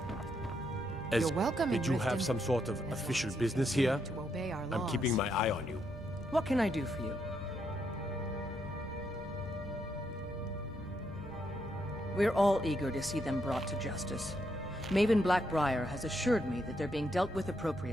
You're welcome. Did you have some sort of official business here? To obey our I'm laws. keeping my eye on you. What can I do for you? We're all eager to see them brought to justice. Maven Blackbriar has assured me that they're being dealt with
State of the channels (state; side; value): normal; both; correlation 0.78